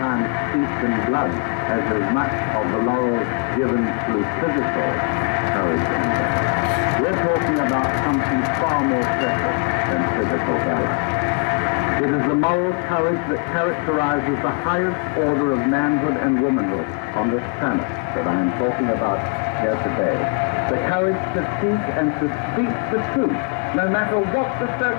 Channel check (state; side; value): quieter; right; 33.8 dB